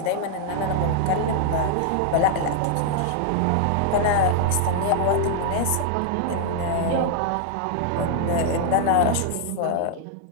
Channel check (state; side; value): different; both; correlation -0.01